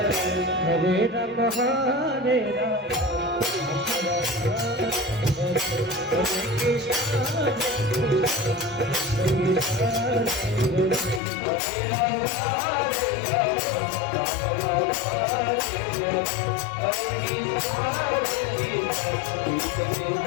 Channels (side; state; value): right; drops out; at 11.2 s